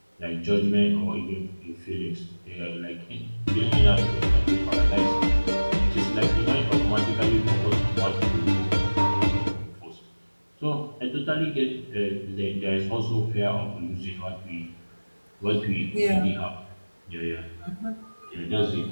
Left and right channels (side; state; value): both; inverted; correlation -1.00